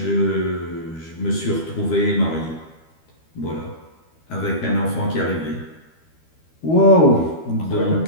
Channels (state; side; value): late; right; 12 ms